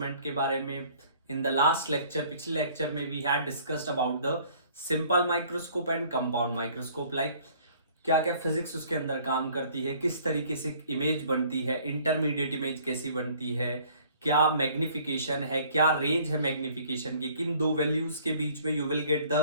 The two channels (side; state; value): both; inverted; correlation -0.56